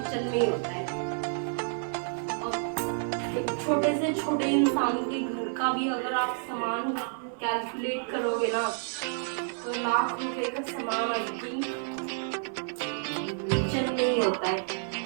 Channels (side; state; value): left; silent; 58 dB below the other